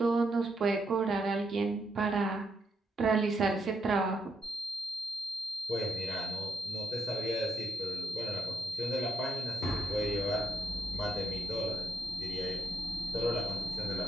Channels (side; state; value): both; normal; correlation 0.80